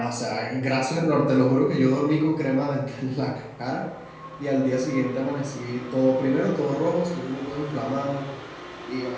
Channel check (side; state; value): both; identical; correlation 1.00